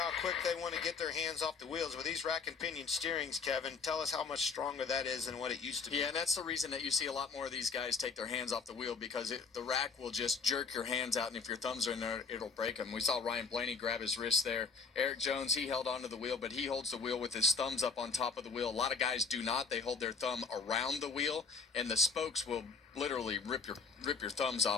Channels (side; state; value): right; quieter; 5.0 dB